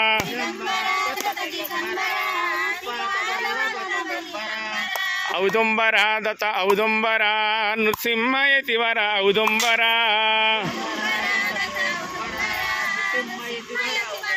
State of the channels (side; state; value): both; identical; correlation 1.00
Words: ఔదుంబరా దత్త ఔదుంబరా నృసింహయతివర ఔదుంబరా